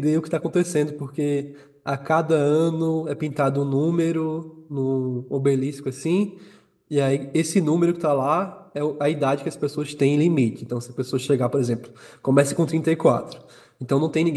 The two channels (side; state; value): both; identical; correlation 1.00